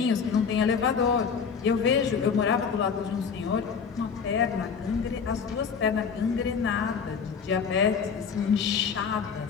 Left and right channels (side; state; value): right; quieter; 6.2 dB